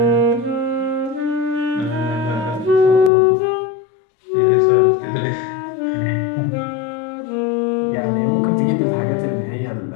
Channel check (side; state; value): right; drops out; at 3.1 s